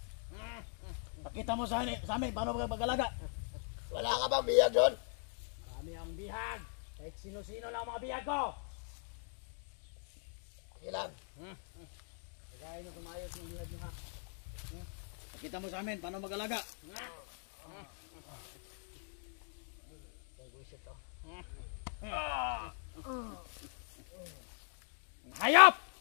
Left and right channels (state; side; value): silent; right; 51 dB below the other